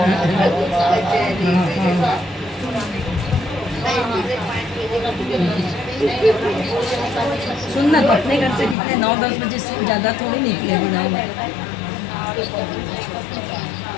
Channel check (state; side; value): drops out; right; at 8.8 s